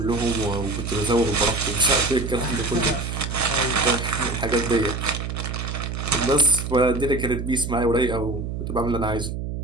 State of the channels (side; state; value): right; noise; hum, 5 dB below the sound